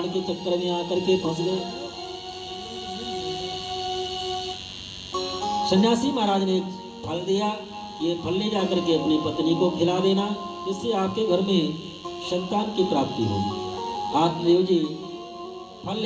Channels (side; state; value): both; identical; correlation 1.00